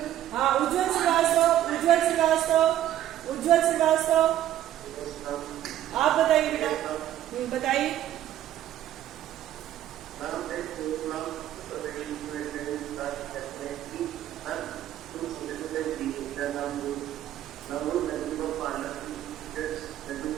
हाँ, उज्जवल श्रीवास्तव, उज्जवल श्रीवास्तव, उज्जवल श्रीवास्तव, आप बताइए बेटा, बताइए।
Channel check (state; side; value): quieter; left; 12.4 dB